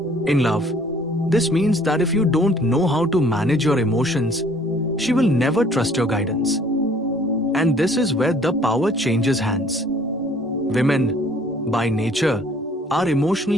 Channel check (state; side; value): normal; both; correlation 0.57